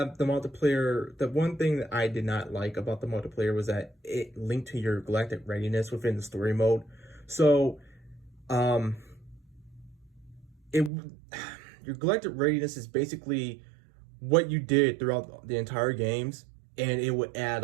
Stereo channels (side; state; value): left; drops out; at 10.9 s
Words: the multiplayer, the one thing that I did not like about the multiplayer was that it linked to your galactic readiness within the story mode. So, your galactic readiness is basically what you did throughout the entire games, and it would add